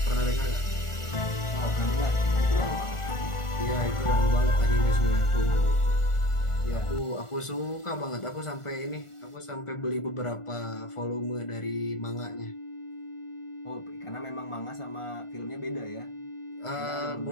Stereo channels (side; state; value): right; late; 1.4 ms